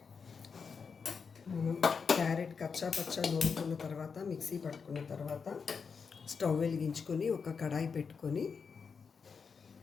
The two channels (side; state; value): right; quieter; 5.7 dB